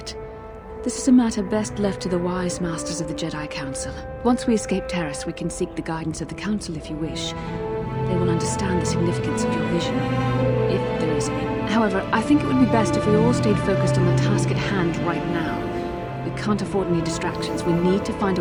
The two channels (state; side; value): identical; both; correlation 1.00